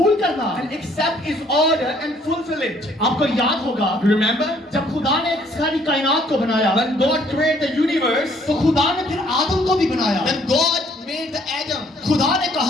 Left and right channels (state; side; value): normal; both; correlation 0.63